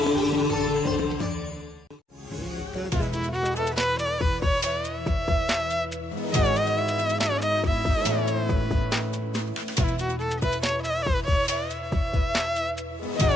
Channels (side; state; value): both; normal; correlation 0.79